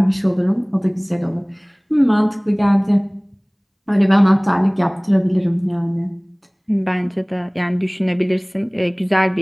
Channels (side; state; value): both; identical; correlation 1.00